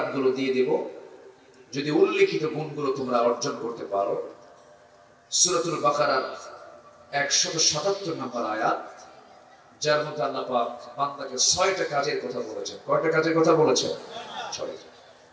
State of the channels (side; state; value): both; identical; correlation 1.00